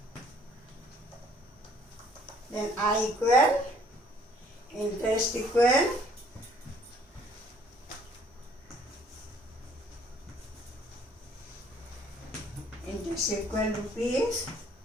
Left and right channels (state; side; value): normal; both; correlation 0.60